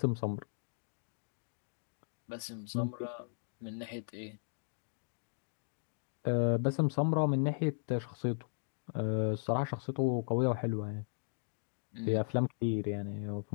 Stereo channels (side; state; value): right; silent; digital silence